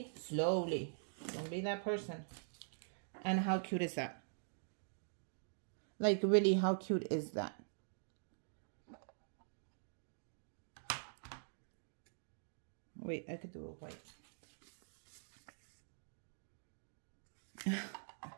slowly. Don't be that person. And how cute is that? Like, really, how cute is that? Wait, I could do it white.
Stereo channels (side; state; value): left; silent; digital silence